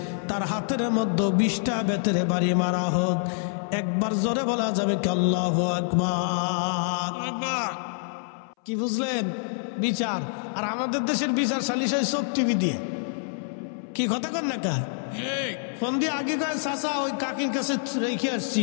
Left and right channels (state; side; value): silent; right; 61 dB below the other